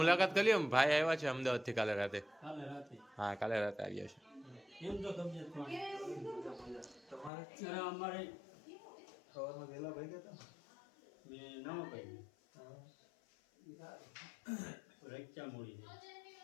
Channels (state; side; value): drops out; right; at 7.3 s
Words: કરી લ્યો. ભાઈ આવ્યા છે અમદાવાદથી કાલે રાતે. હા, કાલે રાતે આવ્યા છે.